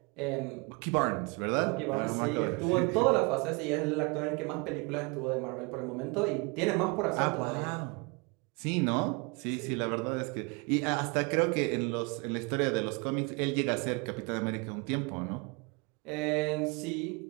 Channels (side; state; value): left; quieter; 30.3 dB